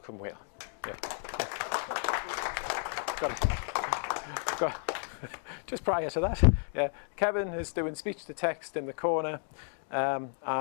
Will. Yeah. Just prior to that, yeah, Kevin is doing speech to text in the corner,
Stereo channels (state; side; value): silent; right; 56 dB below the other